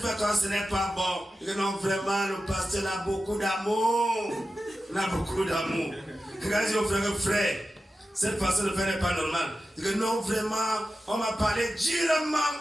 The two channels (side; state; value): both; normal; correlation 0.93